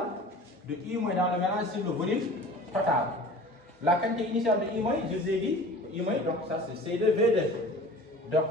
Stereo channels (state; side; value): normal; both; correlation 0.42